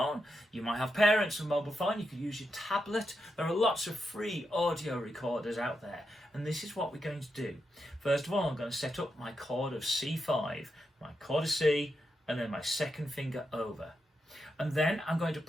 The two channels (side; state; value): both; normal; correlation 0.85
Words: you might have parents with a mobile phone, you could use your tablet. There are lots of free audio recorders out there, and this is what we're going to do. First of all, I'm going to set up my chord of C5, my chord of C, and then my second finger over. And then I'm going to